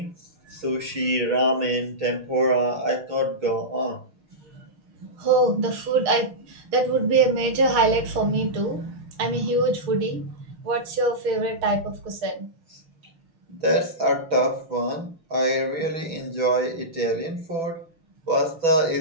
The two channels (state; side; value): late; left; 6.4 ms